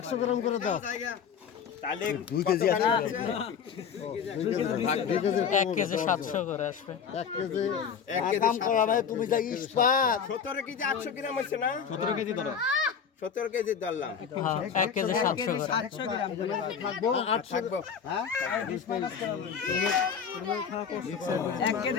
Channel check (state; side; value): quieter; right; 7.0 dB